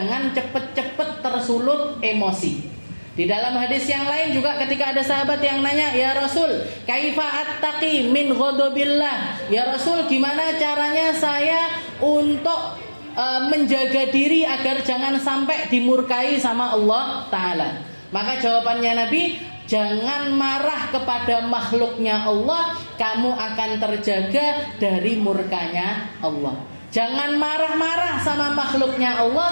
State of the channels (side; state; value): both; inverted; correlation -1.00